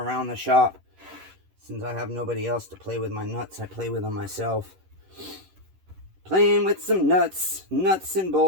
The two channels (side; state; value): left; late; 11 ms